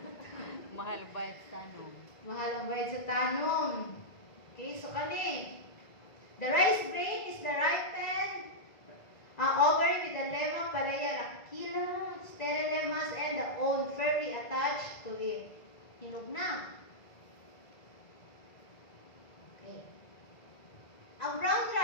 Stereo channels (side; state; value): right; late; 1.9 ms